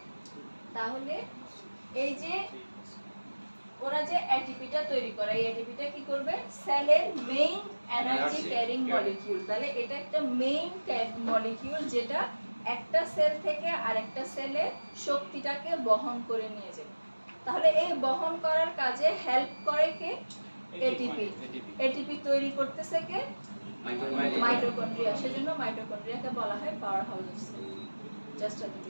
তাহলে এই যে ওরা যে এটিপিটা তৈরি করে এই এটিপিটা কি করবে সেলের মেইন এনার্জি ক্যারিং মলিকিউল তাহলে এটা একটা মেইন মলিকিউল যেটা একটা সেল থেকে আরেকটা সেলে শক্তিটাকে বহন করে নিয়ে যাবে তাহলে এই বহন করার কাজে হেল্প করে কে এটিপি এটিপি তৈরি করতেছে কে মাইটোকন্ড্রিয়া সেজন্য মাইটোকন্ড্রিয়াকে বলা হয় power house of cell just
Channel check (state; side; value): inverted; both; correlation -1.00